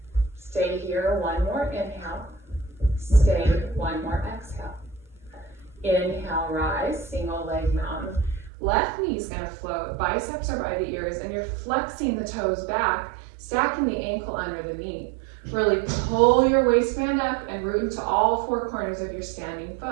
Stay here, one more inhale. Stay, one more exhale. Inhale, rise, single leg mountain. Left knee's gonna float, biceps are by the ears, and you're flexing the toes back, stacking the ankle under the knee. Really pull your waistband up and root into all four corners of your standing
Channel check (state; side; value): drops out; left; at 8.5 s